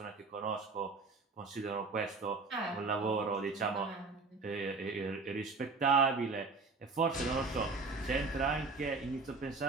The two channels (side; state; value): left; quieter; 4.1 dB